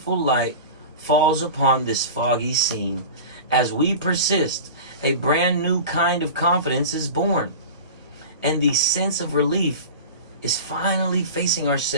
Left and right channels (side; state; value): both; inverted; correlation -0.33